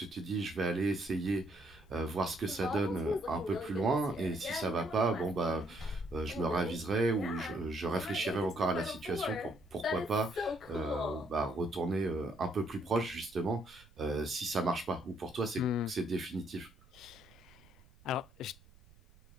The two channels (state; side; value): noise; right; rumble, 25 dB below the sound